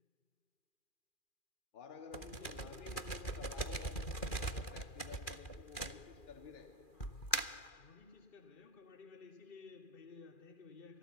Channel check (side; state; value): right; late; 2.4 ms